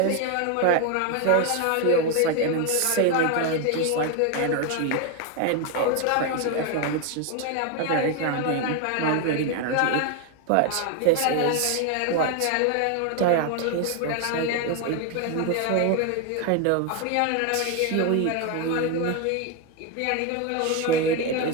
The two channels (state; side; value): different; both; correlation 0.01